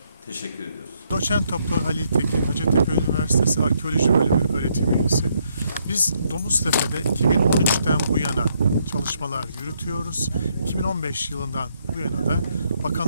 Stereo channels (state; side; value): inverted; both; correlation -0.73